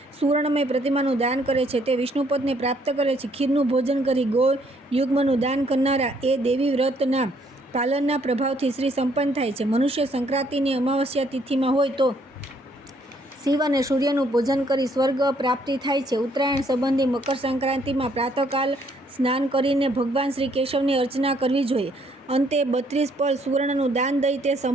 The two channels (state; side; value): normal; both; correlation 0.67